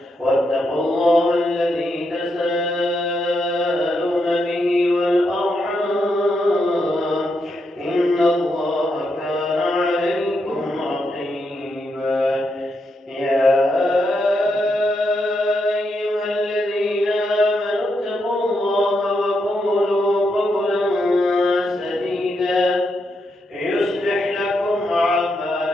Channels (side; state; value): both; normal; correlation 0.82